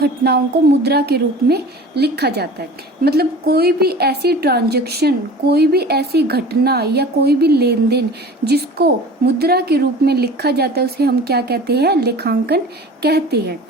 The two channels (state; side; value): normal; both; correlation 0.40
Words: को मुद्रा के रूप में लिखा जाता है। मतलब कोई भी ऐसी ट्रांजैक्शन, कोई भी ऐसी घटना या कोई भी लेन देन जिसको मुद्रा के रूप में लिखा जाता है उसे हम क्या कहते हैं, लेखांकन कहते हैं।